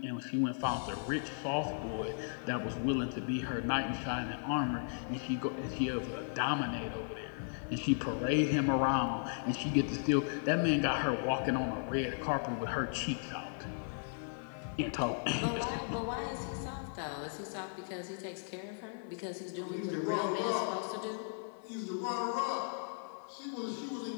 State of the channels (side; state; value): right; silent; digital silence